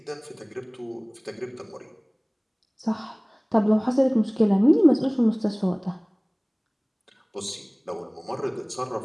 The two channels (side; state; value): both; identical; correlation 1.00